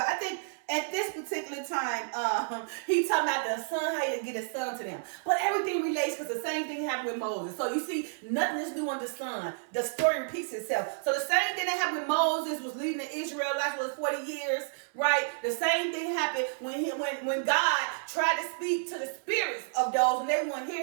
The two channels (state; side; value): silent; left; 57 dB below the other